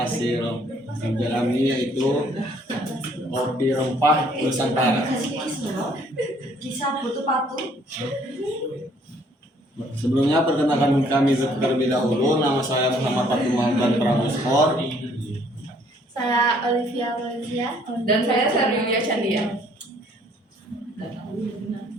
kerja kami, yaitu kopi rempah Nusantara. Sebelumnya perkenalkan kami terlebih dahulu. Nama saya Muhammad Fatul Mahdan Pramuskor. Saya Olivia Valencia. Dan saya Yulia Chandia.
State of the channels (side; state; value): both; normal; correlation 0.62